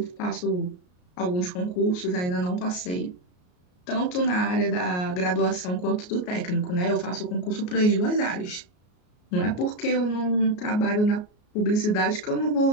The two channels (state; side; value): late; right; 33 ms